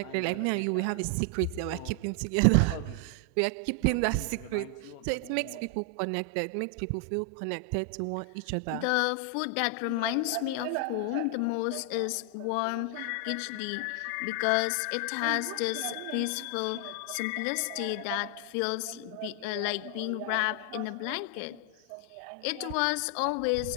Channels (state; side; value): different; both; correlation 0.00